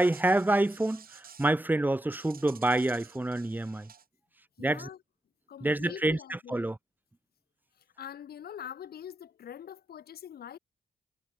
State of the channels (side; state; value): both; normal; correlation 0.87